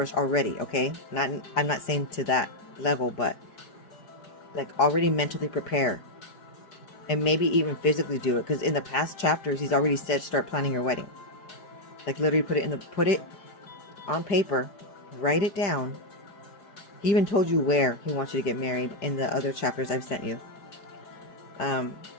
already. Okay, I'm not saying to that level, but like already mentally prepare, and maybe even physically do it, because in the past chapters he's already said start planning your wedding. Like literally put it on paper, write it down. He even told you where he wants you to get married in the other chapters I've sent you.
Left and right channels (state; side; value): late; right; 5.0 ms